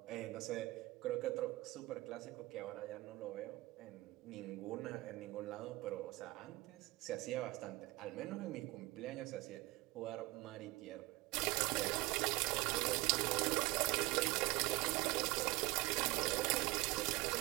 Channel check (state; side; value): quieter; left; 21.3 dB